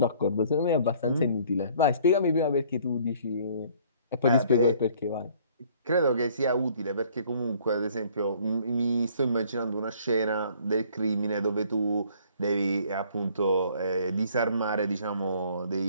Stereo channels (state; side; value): inverted; both; correlation -0.58